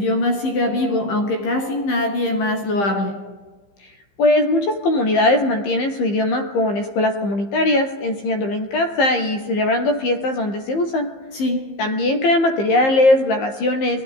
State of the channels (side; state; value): right; late; 15 ms